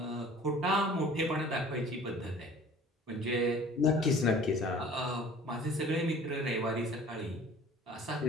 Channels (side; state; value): both; normal; correlation 0.48